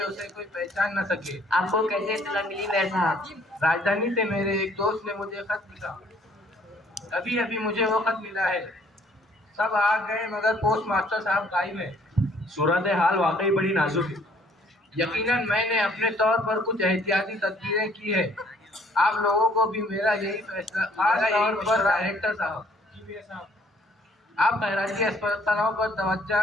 उसे कोई पहचान न सके। आपको कैसे इत्तला मिली मेयर साहब? राजधानी से मेरे एक दोस्त ने मुझे खत लिखा। अभी अभी मुझे वो खत मिला है। सब आ गए मगर पोस्ट मास्टर साहब गायब है। सूरत हाल वाकई बड़ी नाजुक है। यकीनन मैंने अपने तौर पर कुछ एहतियाती तदबीरें की है। आप लोगों को भी मेरा यही फैसला, खास तौर पर डायरेक्टर साहब, आप खैराती अस्पतालों पर तवज्जो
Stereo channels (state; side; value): normal; both; correlation 0.61